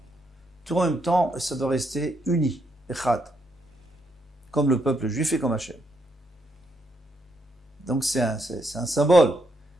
Tout en même temps, ça doit rester uni, echad, comme le peuple juif et comme Hachem. Donc c'est un symbole.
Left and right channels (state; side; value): normal; both; correlation 0.77